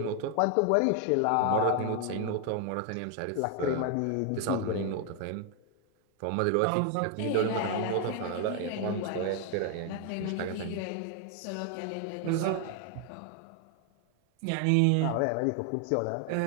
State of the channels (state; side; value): different; both; correlation 0.00